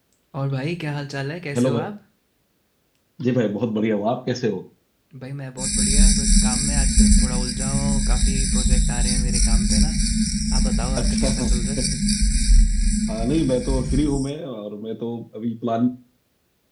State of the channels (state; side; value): identical; both; correlation 1.00